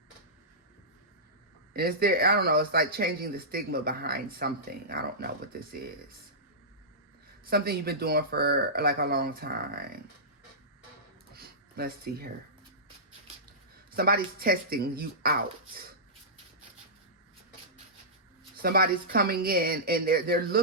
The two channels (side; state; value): both; normal; correlation -0.17